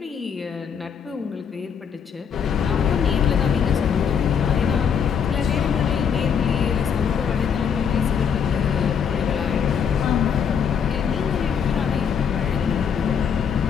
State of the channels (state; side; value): quieter; right; 7.2 dB